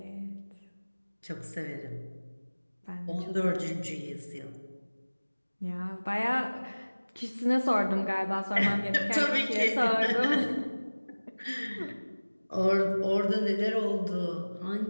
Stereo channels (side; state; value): both; inverted; correlation -1.00